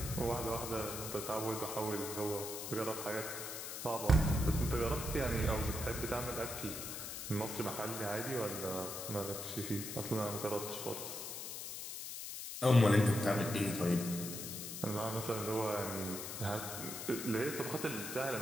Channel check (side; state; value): left; noise; hiss, 7 dB below the sound